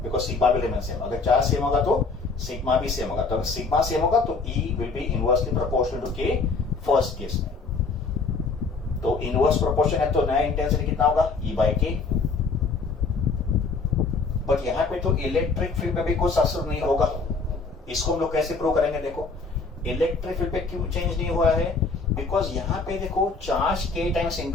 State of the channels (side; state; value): right; quieter; 4.3 dB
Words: बिकॉज सिग्मा भी रिमेन सेम। अगर चार्ज सेम होगा तो सिग्मा भी सेम होगा, तो अगर सिग्मा सेम होगा तो E will be inversely proportional to k first case में। तो इनवर्स प्रोपोर्शन है तो नया इंटेंसिटी कितना होगा, E बाय k। बट यहाँ पे तो इलेक्ट्रिक फील्ड में भी कुछ असर नहीं होगा। इसको हम लोग कैसे प्रूव करेंगे, देखो इलेक्ट्रिक फील्ड पे क्यों चेंज नहीं हुआ है, बिकॉज यहाँ पे देखो चार्ज k टाइम्स